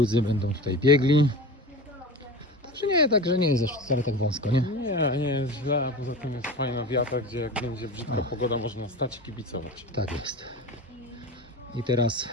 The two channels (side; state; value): both; normal; correlation 0.31